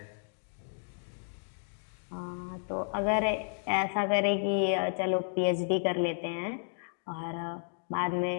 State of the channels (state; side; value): silent; right; digital silence